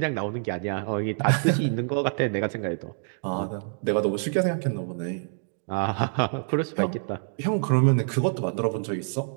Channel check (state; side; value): silent; left; 61 dB below the other